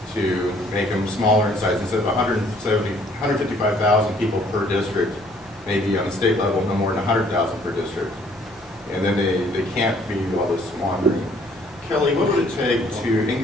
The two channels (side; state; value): left; noise; hum, 29 dB below the sound